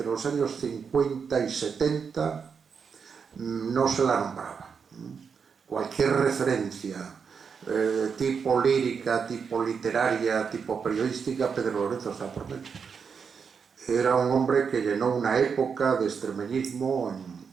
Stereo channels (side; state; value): left; quieter; 6.1 dB